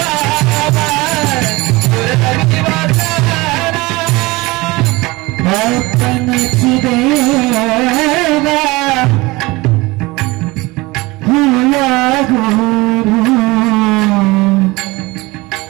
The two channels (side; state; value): left; quieter; 22.4 dB